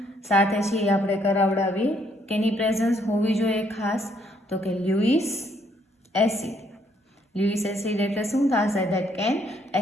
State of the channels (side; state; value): both; normal; correlation 0.69